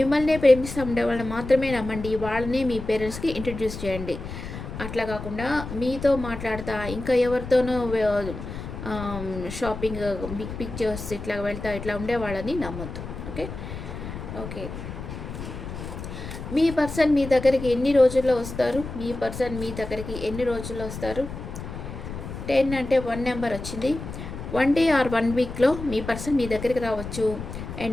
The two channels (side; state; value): left; noise; rumble, 9 dB below the sound